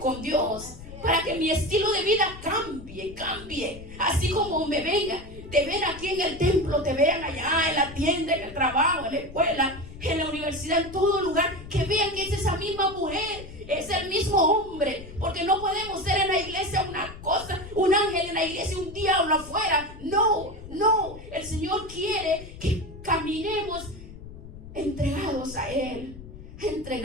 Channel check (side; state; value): left; noise; rumble, 14 dB below the sound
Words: Dios, para que mi estilo de vida cambie. Así como me te ven aquí en el templo, te vean allá en la tienda, en el trabajo, en la escuela, en la universidad, en todo lugar, que vean que es esa misma mujer, es el mismo hombre, porque no podemos ser en la iglesia una cosa, un ángel en la iglesia, un diablo afuera. No, no. El Señor quiere que caminemos entregados a Él,